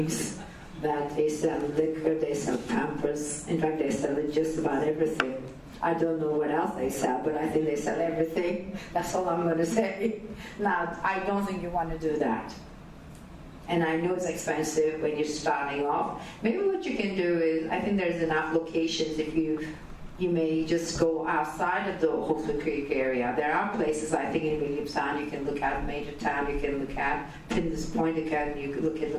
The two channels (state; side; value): identical; both; correlation 1.00